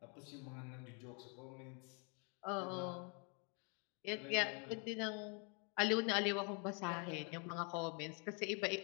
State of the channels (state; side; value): quieter; right; 37.1 dB